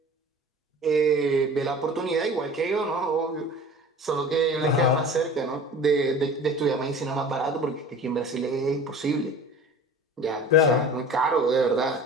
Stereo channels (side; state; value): both; normal; correlation 0.41